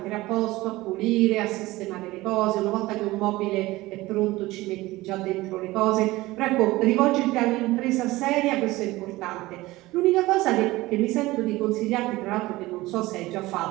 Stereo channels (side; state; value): left; quieter; 19.0 dB